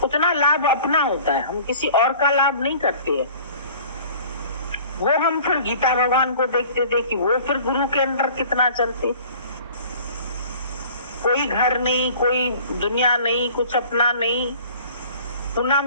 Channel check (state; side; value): inverted; both; correlation -0.48